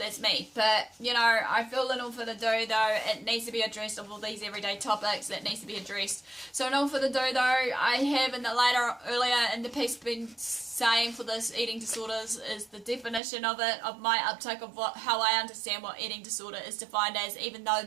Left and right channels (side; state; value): left; drops out; at 13.2 s